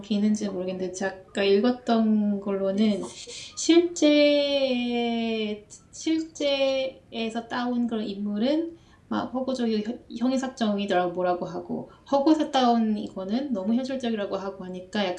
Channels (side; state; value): both; identical; correlation 1.00